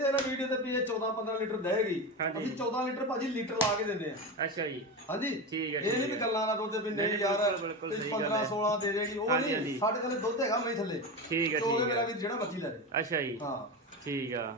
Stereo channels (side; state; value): both; normal; correlation 0.21